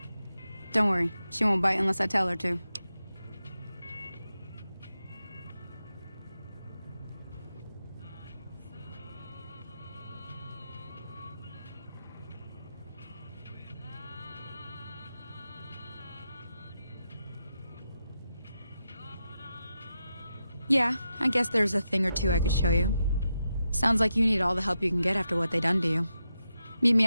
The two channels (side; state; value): both; inverted; correlation -0.87